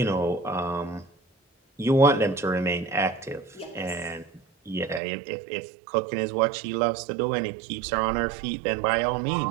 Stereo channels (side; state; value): left; drops out; at 5.0 s